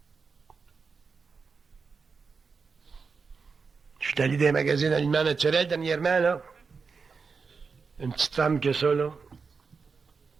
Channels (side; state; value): left; quieter; 5.0 dB